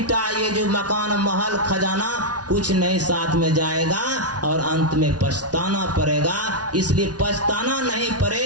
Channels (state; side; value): late; left; 0.69 ms